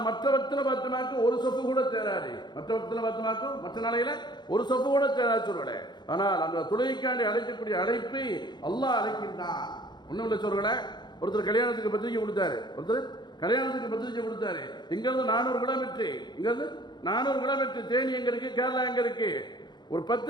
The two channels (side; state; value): right; late; 0.21 ms